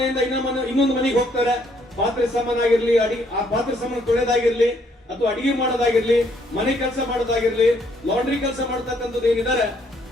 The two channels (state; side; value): normal; both; correlation 0.68